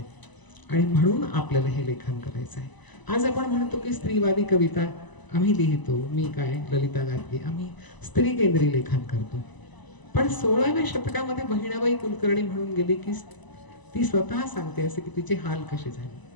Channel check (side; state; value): right; late; 1.0 ms